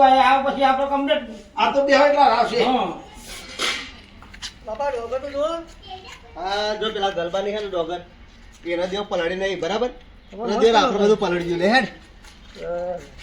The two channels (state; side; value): identical; both; correlation 1.00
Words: આવે પછી આપણે કમ્પ્લીટ આ તો બે એટલા આવશે હા બાપા ડોગર તો જો આ જો પેલા ગલબાની હે ને ડોગર એના દેવ પલાળી નહીં બરાબર અને દેર આપણે બધું પલળી ગયું લે હેડ